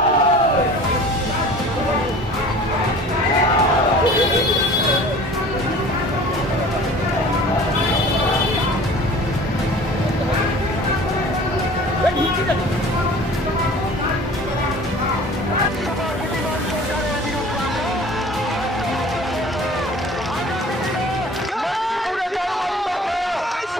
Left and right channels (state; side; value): normal; both; correlation 0.44